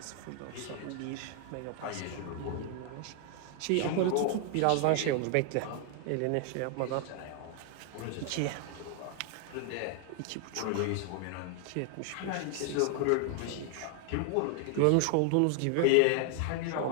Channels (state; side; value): different; both; correlation 0.00